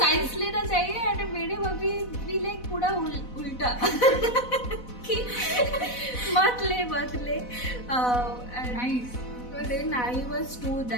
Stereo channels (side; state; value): right; late; 4.1 ms